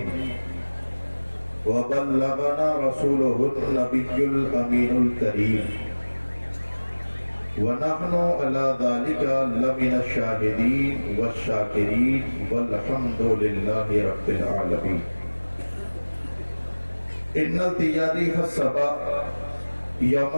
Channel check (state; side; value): inverted; both; correlation -1.00